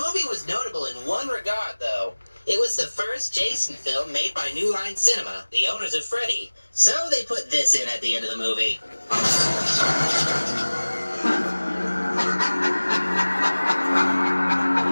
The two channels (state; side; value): inverted; both; correlation -1.00